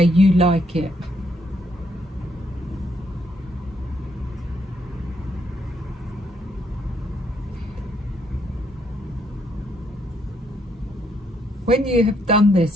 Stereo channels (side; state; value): both; normal; correlation 0.73